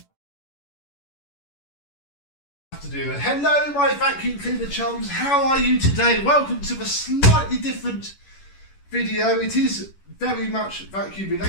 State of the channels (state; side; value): late; right; 11 ms